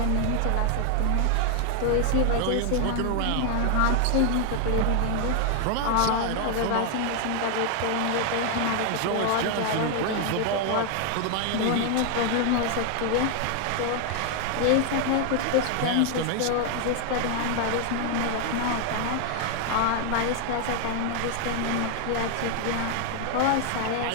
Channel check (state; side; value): different; both; correlation 0.00